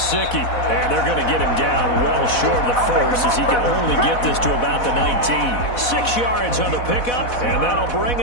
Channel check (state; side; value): late; right; 4.1 ms